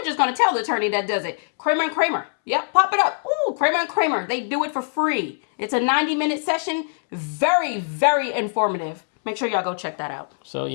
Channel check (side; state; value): right; silent; 64 dB below the other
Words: just going to tell the attorney that does it. Kramer and Kramer. Yep, pop it up. Ooh, Kramer and Kramer. They do it for free. It's a 90-minute session. Very, very informative. Make sure y'all go check that out. So